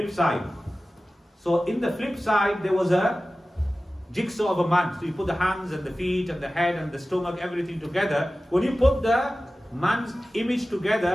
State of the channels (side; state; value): both; normal; correlation 0.96